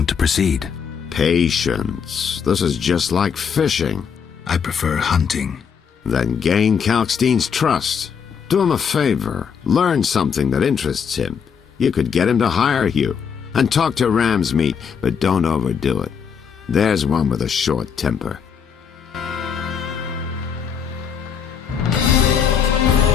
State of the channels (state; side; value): quieter; right; 6.9 dB